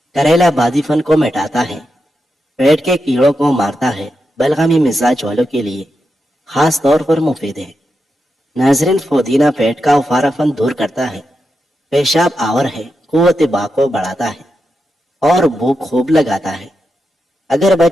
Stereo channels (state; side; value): normal; both; correlation 0.87